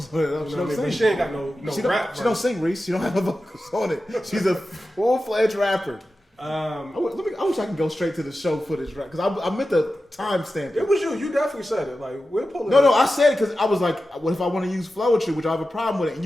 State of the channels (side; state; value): both; normal; correlation 0.93